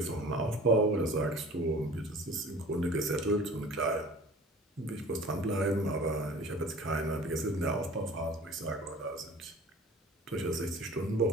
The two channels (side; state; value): both; normal; correlation 0.44